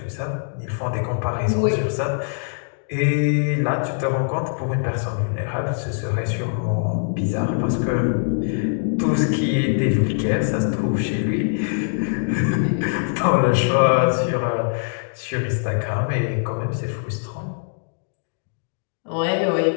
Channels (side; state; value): right; silent; digital silence